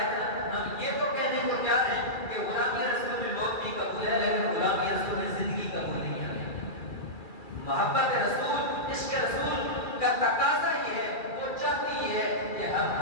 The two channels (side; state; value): right; late; 2.3 ms